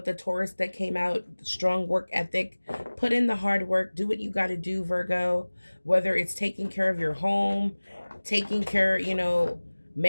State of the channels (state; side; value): inverted; both; correlation -1.00